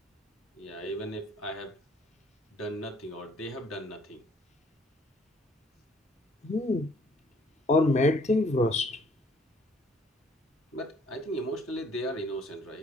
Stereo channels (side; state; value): both; normal; correlation 0.60